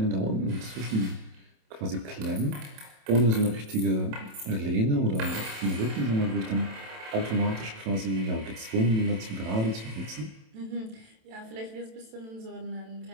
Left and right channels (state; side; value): late; left; 27 ms